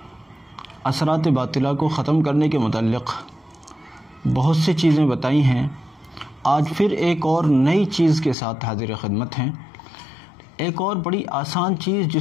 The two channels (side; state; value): right; drops out; at 8.3 s